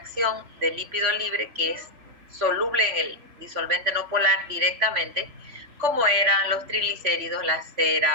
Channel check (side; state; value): left; late; 3.5 ms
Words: del lípido libre, que es soluble en el disolvente no polar directamente, como eran los triglicéridos, las